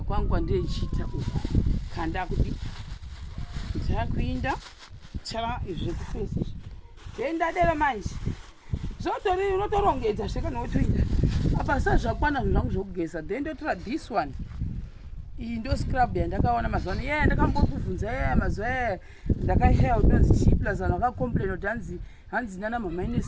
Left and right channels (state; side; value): identical; both; correlation 1.00